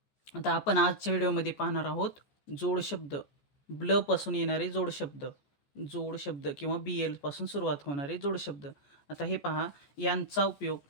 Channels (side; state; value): right; late; 14 ms